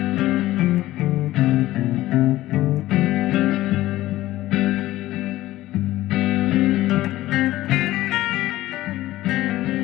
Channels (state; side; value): quieter; right; 16.0 dB